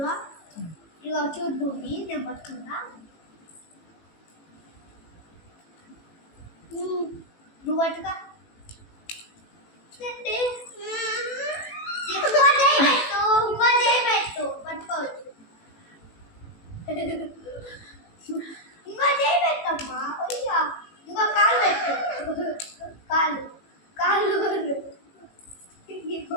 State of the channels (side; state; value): right; late; 18 ms